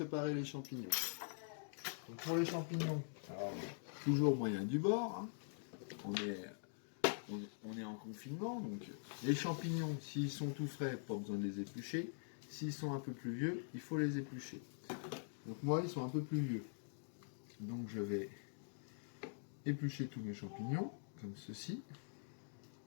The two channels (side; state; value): right; silent; digital silence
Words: les champignons. Donc pour les champignons, alors, toujours moyen du bord, hein. On est en confinement, donc les champignons, s'ils sont tout frais, pas besoin de les éplucher. S'ils sont un peu plus vieux, il faut les éplucher. Donc moi, ils sont un peu plus vieux. Donc je vais éplucher tous mes champignons, comme ceci.